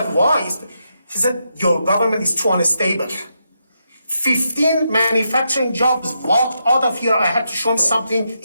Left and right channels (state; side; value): inverted; both; correlation -0.82